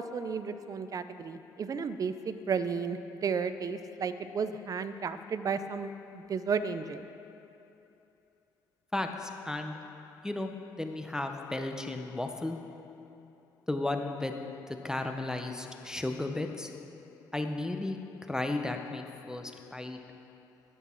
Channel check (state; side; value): normal; both; correlation 0.72